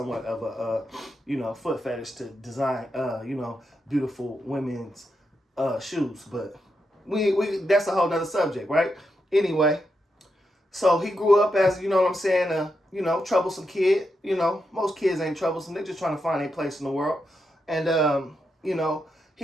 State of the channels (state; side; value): normal; both; correlation 0.84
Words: of a, you know, foot fetish to design, you know, beautiful women's shoes. But we that's a whole nother subject, right? Anyway, so he grew up as, you know what I'm saying, you know, troublesome kid. You know, most kids ain't troublesome. They're just trying to find a place in the world. And, you know,